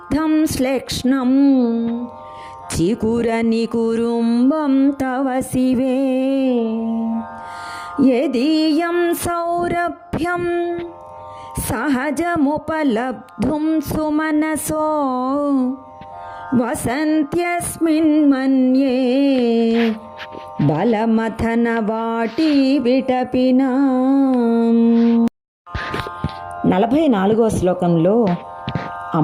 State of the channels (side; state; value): both; identical; correlation 1.00